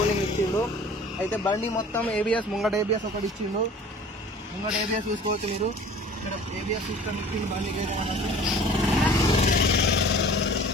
ఇచ్చిండు. అయితే బండి మొత్తం ABS, ముంగట ABS ఒకటి ఇచ్చిండు. ముంగట ABS చూసుకోవచ్చు మీరు. ఇక్కడ ABS సిస్టమ్ ఇచ్చిండు బండికి అయితే.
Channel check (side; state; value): both; normal; correlation 0.46